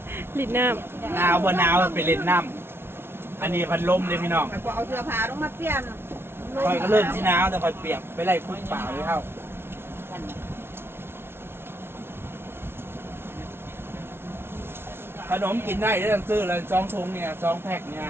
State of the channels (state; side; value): late; left; 0.12 ms